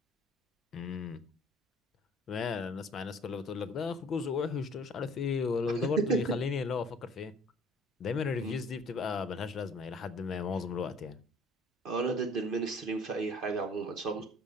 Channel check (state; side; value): normal; both; correlation 0.53